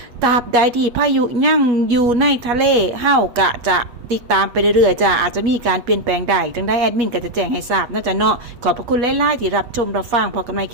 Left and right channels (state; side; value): late; left; 8.4 ms